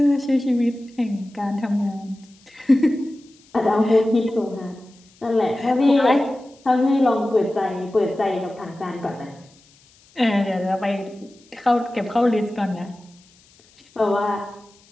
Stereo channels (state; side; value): noise; left; hiss, 30 dB below the sound